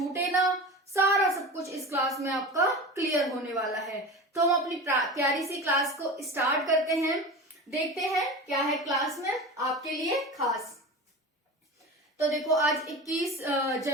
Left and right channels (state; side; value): normal; both; correlation 0.30